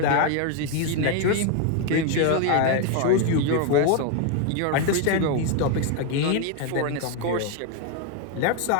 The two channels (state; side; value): different; both; correlation 0.01